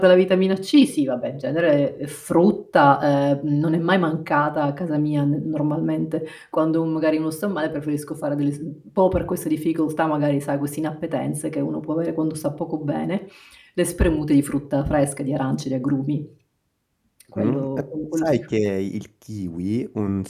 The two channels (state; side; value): identical; both; correlation 1.00